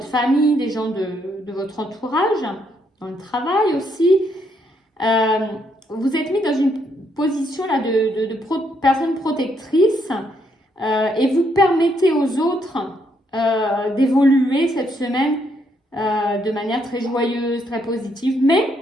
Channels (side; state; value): both; normal; correlation 0.74